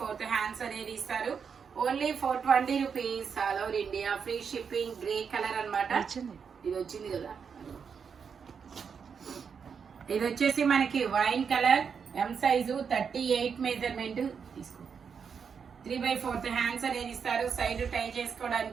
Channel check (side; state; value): left; quieter; 6.4 dB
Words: హ్యాండ్స్ అనేది ఇస్తారు. Only 420 rupees all over India, free shipping. Grey colour అనమాట. ఇది వచ్చింది కదా. ఇది వచ్చేసి మనకి wine colour, M size 38 measurement తీసుకో. 3/4 హ్యాండ్స్ అనేది ఇస్తారు. సైడ్ టై